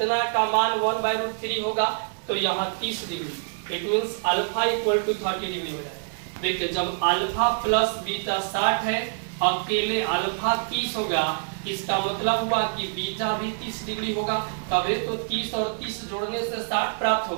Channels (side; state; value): left; silent; 61 dB below the other